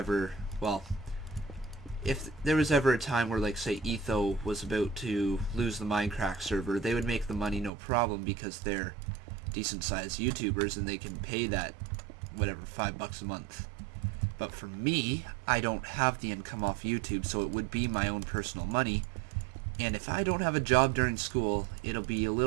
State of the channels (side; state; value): left; drops out; at 7.7 s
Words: well, if there was ever a time where, like, say, Etho was about to lose the Minecraft server, they would make the money no problem because they're decent-sized YouTubers and they can pay that, whatever, $5 a month. But for me, I don't have the income off YouTube, so it would be my own personal money. And if I don't have a job during school, it'll be a